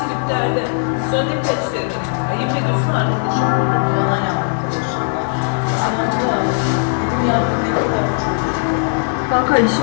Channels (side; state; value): right; silent; 56 dB below the other